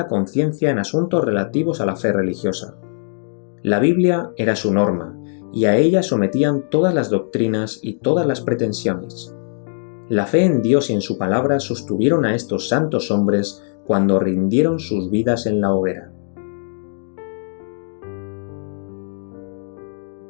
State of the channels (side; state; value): right; silent; digital silence